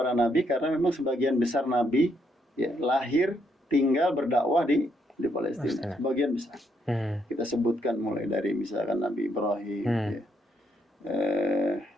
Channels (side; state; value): both; normal; correlation 0.75